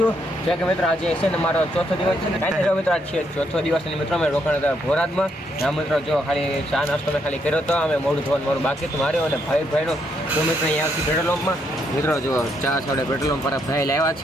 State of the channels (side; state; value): both; normal; correlation 0.75